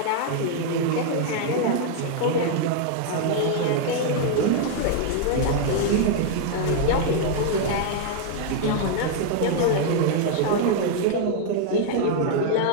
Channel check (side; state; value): both; different; correlation 0.00